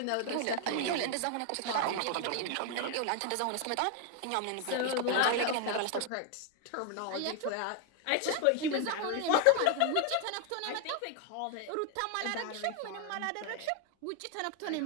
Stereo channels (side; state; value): both; different; correlation 0.00